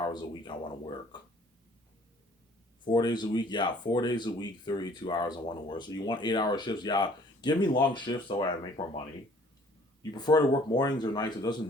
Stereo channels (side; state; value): both; normal; correlation 0.56